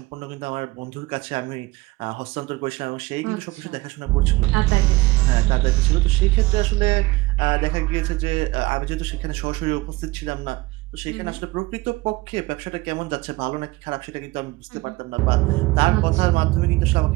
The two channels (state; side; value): quieter; left; 21.4 dB